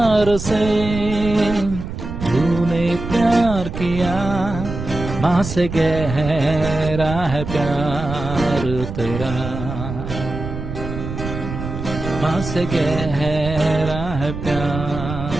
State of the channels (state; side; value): noise; right; rumble, 7 dB below the sound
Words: से तूने प्यार किया. माँ से गहरा है प्यार तेरा. माँ से गहरा है